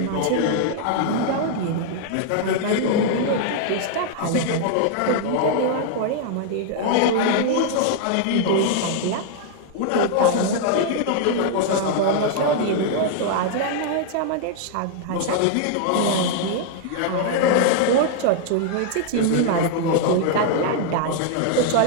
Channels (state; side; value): different; both; correlation 0.00